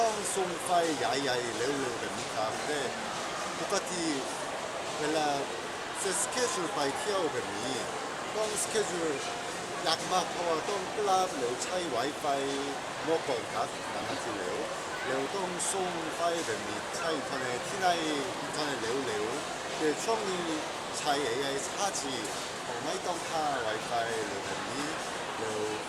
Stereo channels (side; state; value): both; identical; correlation 1.00